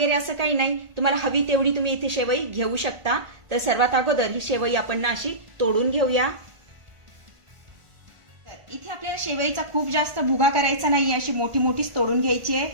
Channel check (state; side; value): late; left; 1.5 ms